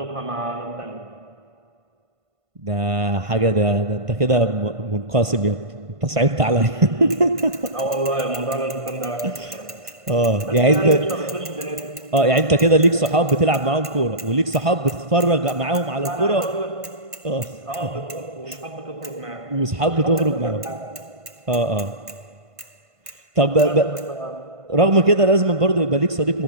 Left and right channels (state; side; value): late; left; 1.5 ms